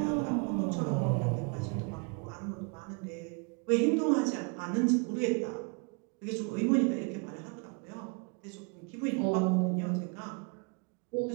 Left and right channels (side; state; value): left; quieter; 34.6 dB